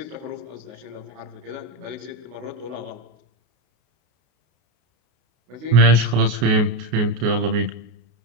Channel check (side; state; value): left; late; 33 ms